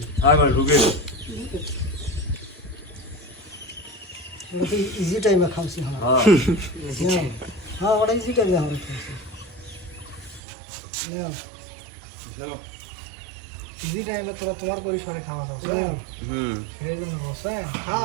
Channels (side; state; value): left; drops out; at 10.4 s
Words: আবার ঢুকে ওটা ইজি টাইমে খাওয়াছি আমরা হ্যাঁ হ্যাঁ ওটা ইজি টাইমে আমরা খাওয়াছি না ইজি টাইমে তোরা তোমার পরিসরে খাওয়া খাও সেই জন্য বসে